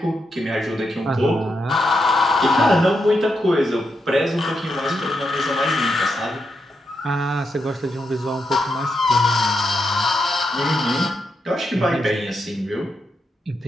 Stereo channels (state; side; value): normal; both; correlation 0.83